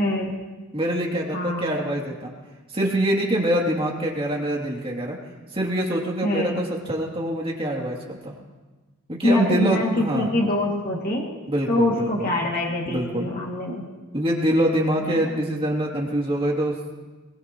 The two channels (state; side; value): normal; both; correlation 0.59